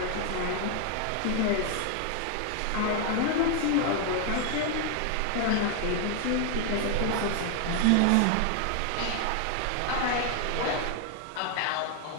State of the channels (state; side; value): different; both; correlation 0.00